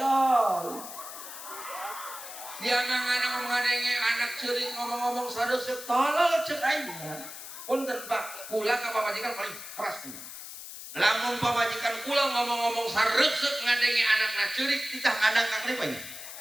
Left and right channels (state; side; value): noise; left; hiss, 11 dB below the sound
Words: Dia anak ngomong ada yang anak ceurik ngomong-ngomong sareuseup tolol ceuk aing. Punten Pak, kula ka pamajikan paling keras tuh. Lamun pamajikan kula ngomong-ngomong sareuseup ngadengi anakna ceurik titah ngadang ka klipanya.